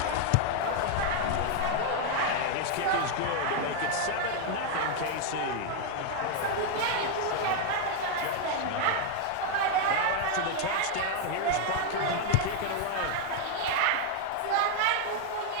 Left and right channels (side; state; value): both; different; correlation 0.00